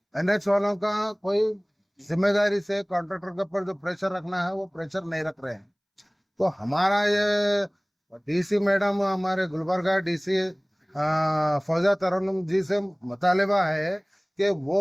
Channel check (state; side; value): identical; both; correlation 1.00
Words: NH वालों का कोई जिम्मेदारी से कॉन्ट्रैक्टर के ऊपर जो प्रेशर रखना है वो प्रेशर नहीं रख रहे हैं। तो हमारा ये DC मैडम, हमारे गुलबर्गा DC फौजा तरन्नुम जी से मुतालिबा है कि